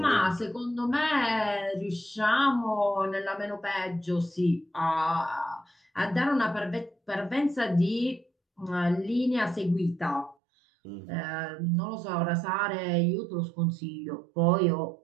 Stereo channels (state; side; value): drops out; left; at 10.4 s